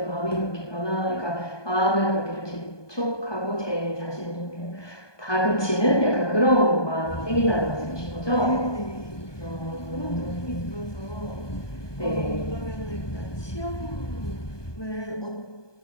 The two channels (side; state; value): right; late; 1.2 ms